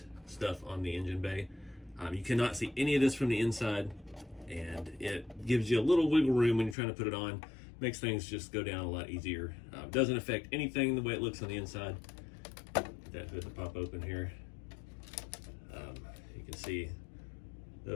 stuff on the engine bay. You cannot see any of this from the inside, and it gives you a little wiggle room when you're trying to put it on. Makes things just go down a lot easier. Doesn't affect anything the way it looks on the inside. Get that hood to pop open here. You can see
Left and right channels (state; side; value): drops out; right; at 6.8 s